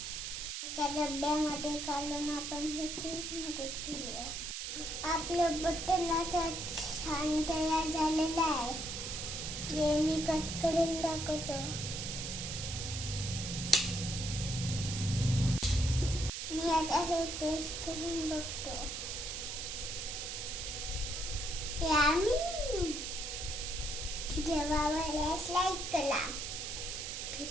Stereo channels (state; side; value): noise; right; hiss, 5 dB below the sound